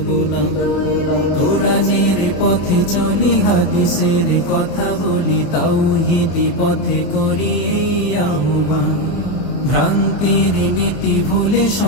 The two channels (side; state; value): right; late; 28 ms